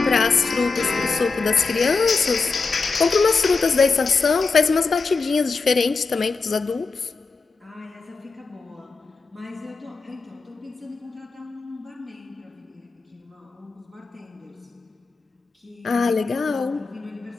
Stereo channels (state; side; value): quieter; right; 4.3 dB